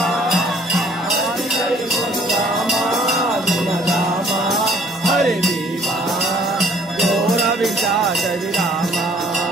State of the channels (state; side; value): normal; both; correlation 0.58